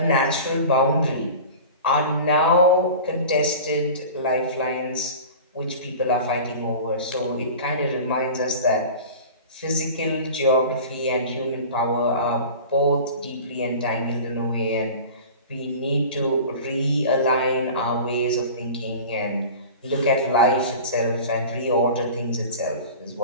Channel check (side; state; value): both; inverted; correlation -0.37